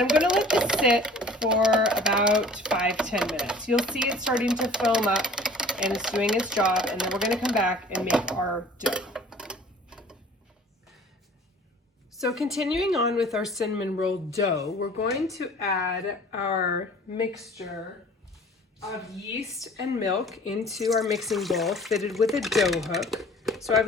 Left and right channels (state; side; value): normal; both; correlation 0.48